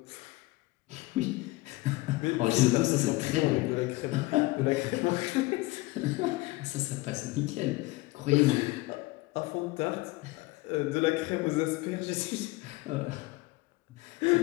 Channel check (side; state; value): right; quieter; 21.3 dB